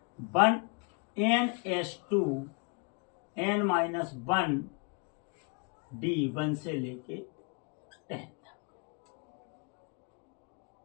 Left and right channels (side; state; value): right; quieter; 34.8 dB